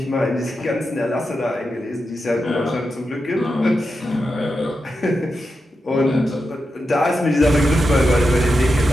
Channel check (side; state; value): both; normal; correlation 0.88